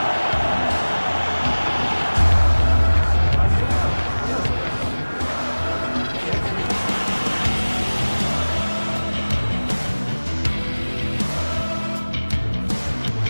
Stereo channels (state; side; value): inverted; both; correlation -1.00